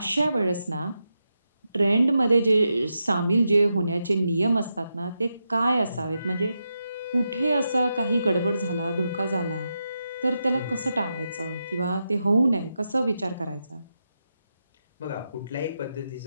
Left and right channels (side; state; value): both; inverted; correlation -0.87